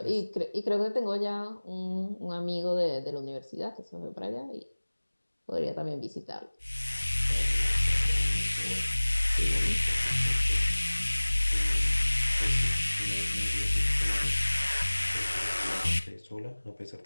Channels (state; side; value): inverted; both; correlation -1.00